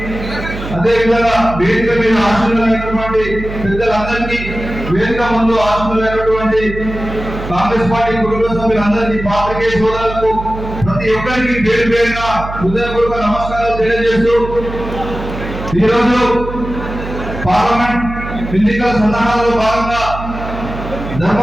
అదేవిధంగా వేదిక మీద ఆశీర్వైనటువంటి పెద్దలందరికీ, వేదిక ముందు ఆశీర్వైనటువంటి కాంగ్రెస్ పార్టీ కుటుంబ సభ్యులందరికీ, పాత్రికేయ సోదరులకు ప్రతి ఒక్కరికి పేరు పేరున హృదయపూర్వక నమస్కారాలు తెలియజేస్తూ ఈరోజు పార్లమెంట్ ఎన్నికల సన్నాహాలలో భాగంగా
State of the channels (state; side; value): noise; right; hum, 9 dB below the sound